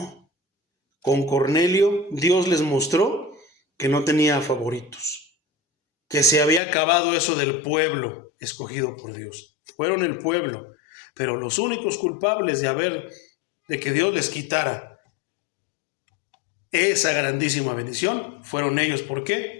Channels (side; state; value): right; drops out; at 6.6 s